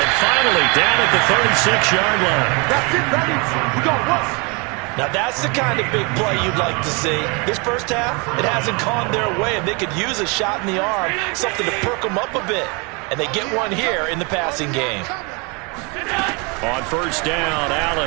finally down at the 36-yard line. That's it, baby. We got what? Now that's the kind of big play you'd like to see. This first half, it hasn't gone their way, and they could use a shot in the arm, something to perk them up a bit. And they get one here in the passing game. On 1st down,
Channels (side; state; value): left; quieter; 30.6 dB